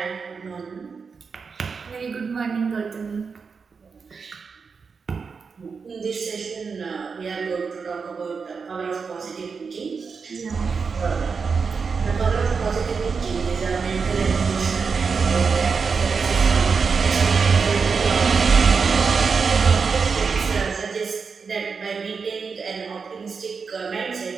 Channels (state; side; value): quieter; left; 5.3 dB